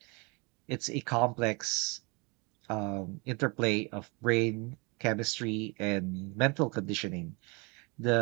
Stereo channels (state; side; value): quieter; left; 29.7 dB